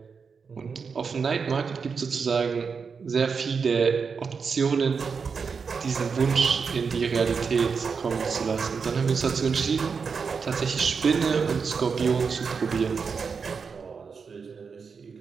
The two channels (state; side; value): quieter; left; 5.6 dB